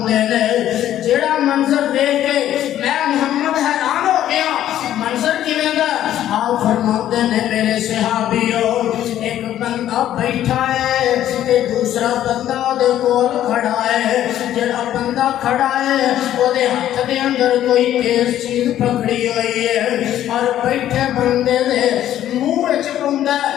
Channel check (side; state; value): right; quieter; 11.9 dB